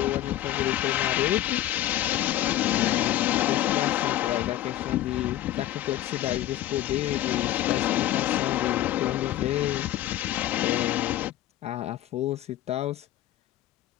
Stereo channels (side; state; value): right; quieter; 13.6 dB